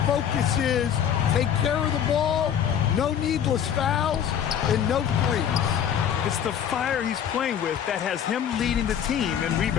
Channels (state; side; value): quieter; right; 8.9 dB